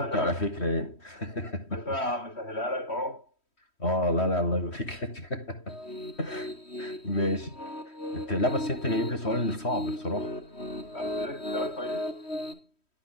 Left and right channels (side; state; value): right; late; 3.1 ms